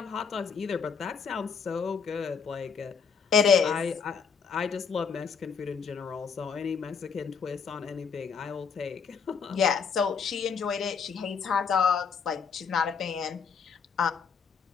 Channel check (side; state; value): right; quieter; 6.1 dB